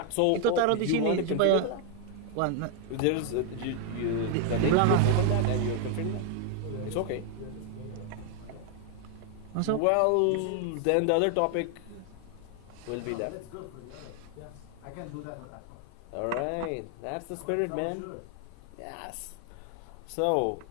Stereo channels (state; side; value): different; both; correlation 0.00